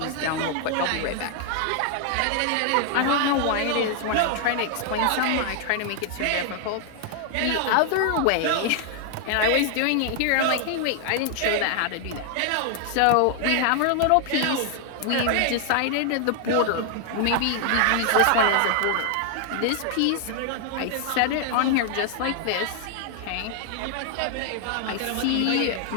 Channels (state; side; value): different; both; correlation 0.00